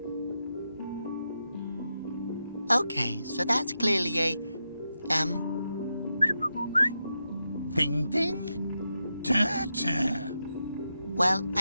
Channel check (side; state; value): both; inverted; correlation -0.86